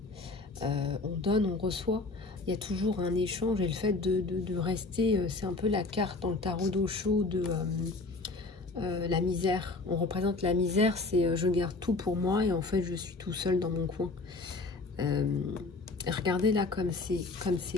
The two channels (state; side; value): quieter; right; 3.4 dB